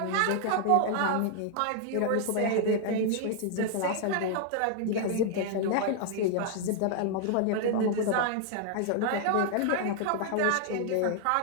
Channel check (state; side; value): different; both; correlation 0.00